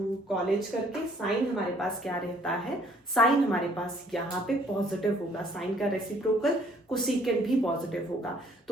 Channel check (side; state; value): both; normal; correlation 0.61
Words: कॉलेज करके साइन हमारे पास क्या रहता है, साइन हमारे पास यहाँ पे पॉजिटिव होगा, साइन का रेसिप्रोकल कोसेकेंट भी पॉजिटिव होगा।